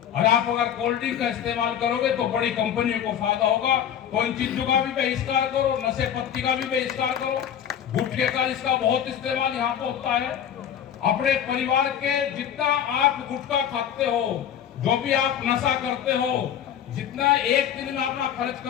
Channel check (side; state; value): right; quieter; 9.5 dB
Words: और आप अगर कोल्ड ड्रिंक का इस्तेमाल करोगे तो बड़ी कंपनियों को फायदा होगा। तो इन चीजों का भी बहिष्कार करो, नशे पत्ती का भी बहिष्कार करो, गुटखे का इसका बहुत इस्तेमाल यहाँ पे होता है। अपने परिवार के जितना आप गुटखा खाते हो, जो भी आप नशा करते हो, जितना एक दिन में अपना खर्च